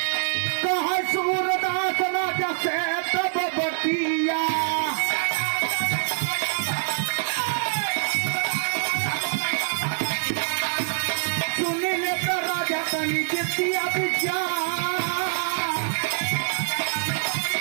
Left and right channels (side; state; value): left; silent; digital silence